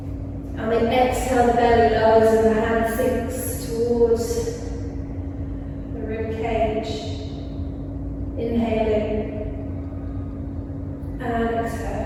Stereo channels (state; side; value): identical; both; correlation 1.00